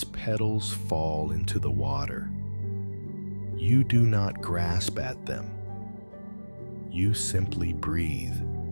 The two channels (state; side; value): inverted; both; correlation -1.00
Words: petals fall into the water. You do not grasp at them. You simply breathe,